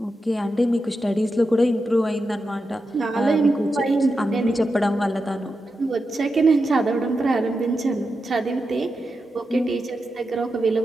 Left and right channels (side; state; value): both; normal; correlation 0.88